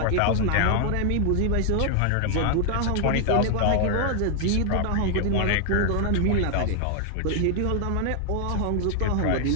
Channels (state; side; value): different; both; correlation 0.00